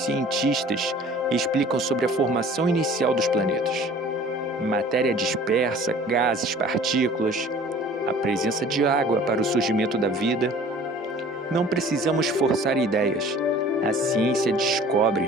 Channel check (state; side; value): normal; both; correlation 0.48